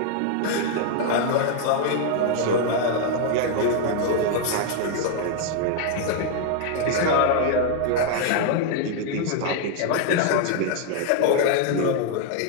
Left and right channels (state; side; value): different; both; correlation 0.00